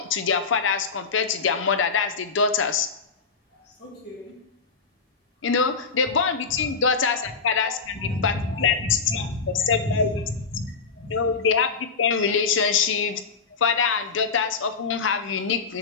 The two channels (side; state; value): right; quieter; 5.1 dB